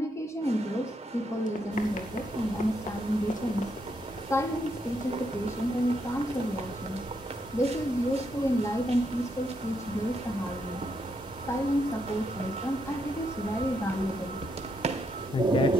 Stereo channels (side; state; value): both; normal; correlation 0.78